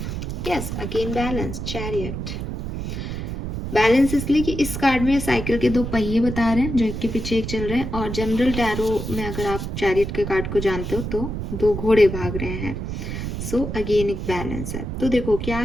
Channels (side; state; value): right; noise; rumble, 5 dB below the sound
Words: yes again balance, chariot. Balance इसलिए कि इस कार्ड में साइकिल के 2 पहिए बता रहे हैं जो एक के पीछे एक चल रहे हैं, और जनरल टैरो में अगर आप चैरियट के कार्ड को जानते हो तो 2 घोड़े भाग रहे हैं। सो अगेन एक बैलेंस है। तो देखो क्या